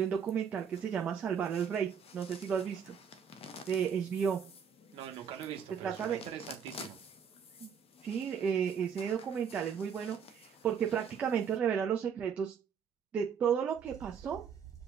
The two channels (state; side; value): quieter; left; 7.4 dB